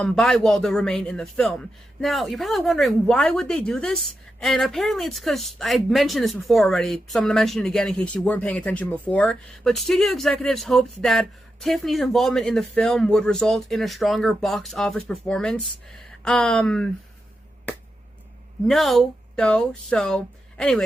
Waldo remain in the film. Now, you're probably wondering, why would they do this? And apparently it's because, I mentioned this before already, so I'm going to mention it again in case you weren't paying attention before, but studio executives hoped that Tiffany's involvement in the film would result in a stronger box office performance. No, though, so,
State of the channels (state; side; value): normal; both; correlation 0.87